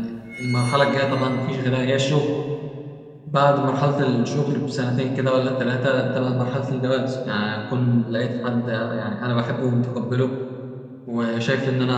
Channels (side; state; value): both; identical; correlation 1.00